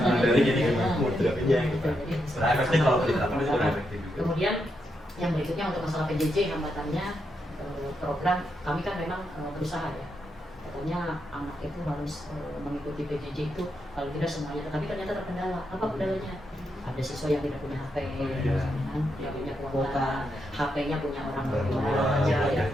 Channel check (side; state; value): both; normal; correlation 0.82